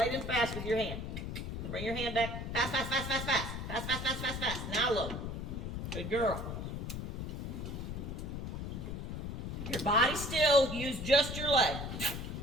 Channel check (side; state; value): left; noise; rumble, 5 dB below the sound